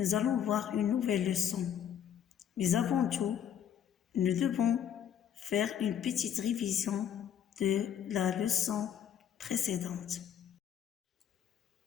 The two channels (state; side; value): quieter; right; 9.2 dB